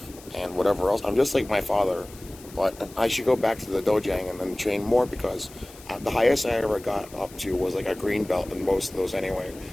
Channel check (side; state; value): left; noise; hiss, 20 dB below the sound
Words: and whatever else. I'm just like my father. But I should go back to the dojang and then train more because the highest I ever got up to was like a green belt in most of those anyway.